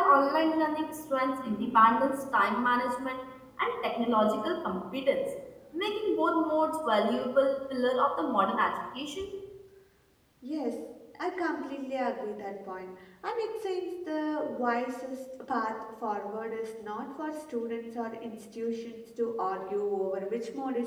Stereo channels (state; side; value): identical; both; correlation 1.00